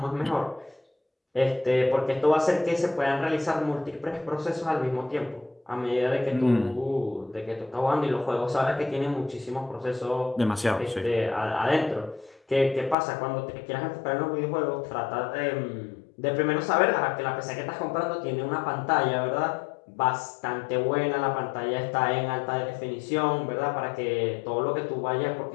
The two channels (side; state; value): right; drops out; at 13.0 s